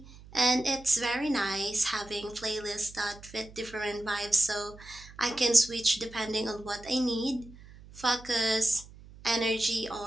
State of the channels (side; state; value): right; noise; hum, 20 dB below the sound